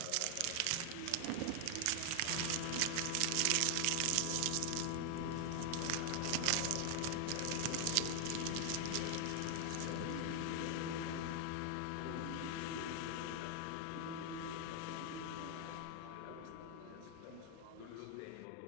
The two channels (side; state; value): both; different; correlation 0.00